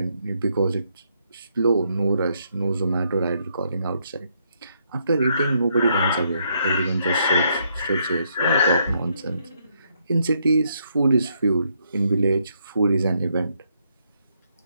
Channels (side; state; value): both; inverted; correlation -0.75